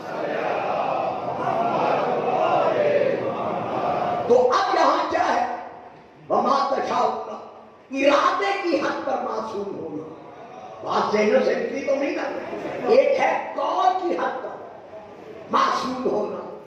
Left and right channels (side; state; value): both; identical; correlation 1.00